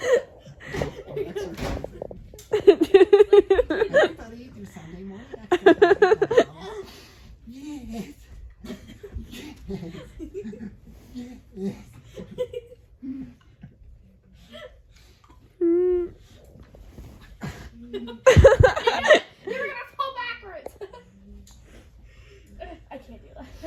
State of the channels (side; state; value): both; identical; correlation 1.00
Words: Everybody do Sunday morning exercise. Yes. Yes. You're gonna fall backwards. I can't do that.